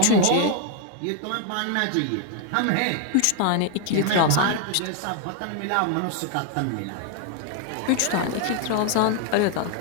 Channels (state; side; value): different; both; correlation 0.00